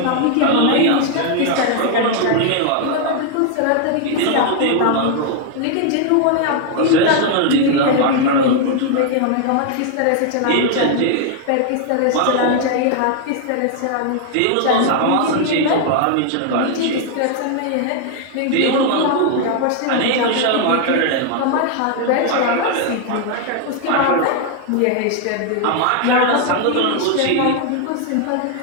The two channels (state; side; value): different; both; correlation 0.00